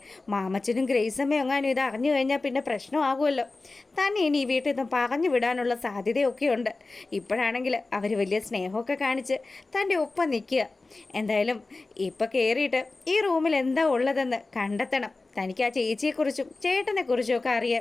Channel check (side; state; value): right; quieter; 3.4 dB